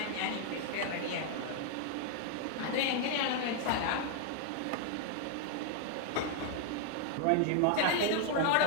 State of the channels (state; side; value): different; both; correlation 0.00